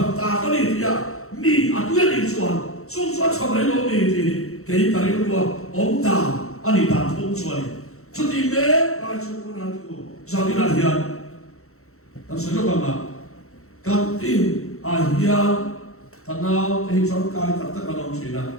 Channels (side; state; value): right; late; 0.63 ms